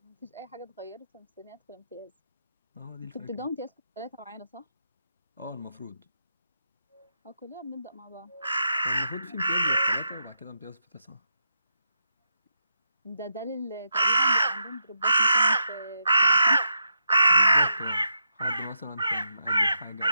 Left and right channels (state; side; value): inverted; both; correlation -0.83